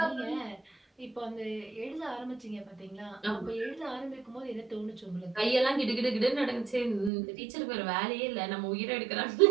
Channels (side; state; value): left; drops out; at 7.1 s